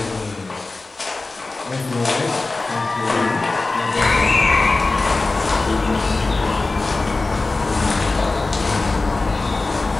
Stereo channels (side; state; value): right; quieter; 3.5 dB